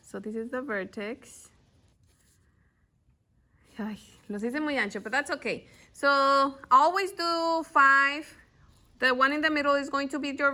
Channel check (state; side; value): identical; both; correlation 1.00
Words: So this is the vertex. Ay, los hice muy ancho, but that's okay. So always do 5. The one in the middle is going to be your